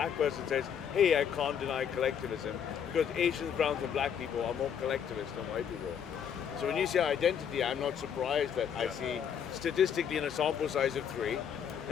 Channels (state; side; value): quieter; right; 8.0 dB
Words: person says, hey, I can't deny collectivism, because Asians, browns and black people are more collectivist than white people. So when you say identity, I'm not surprised that I see statistically in a sample size of 3,